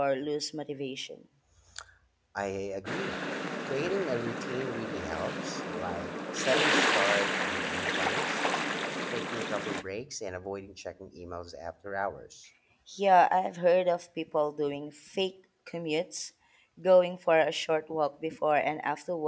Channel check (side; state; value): both; identical; correlation 1.00